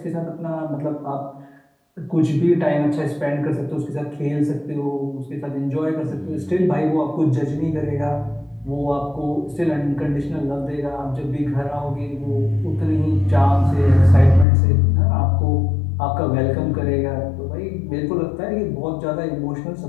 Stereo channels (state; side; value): drops out; right; at 14.5 s